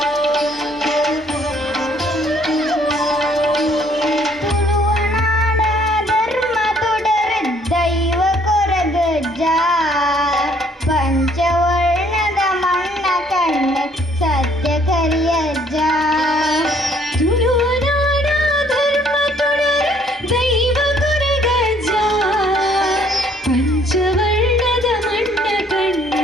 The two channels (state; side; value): normal; both; correlation 0.63